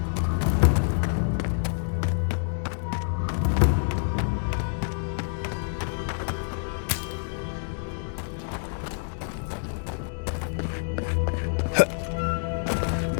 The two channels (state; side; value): silent; right; digital silence